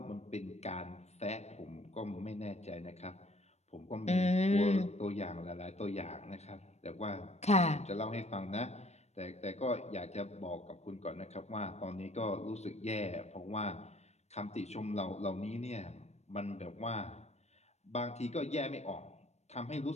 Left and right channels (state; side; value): late; right; 0.32 ms